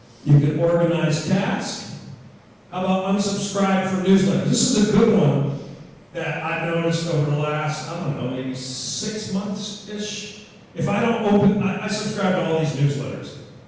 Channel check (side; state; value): both; identical; correlation 1.00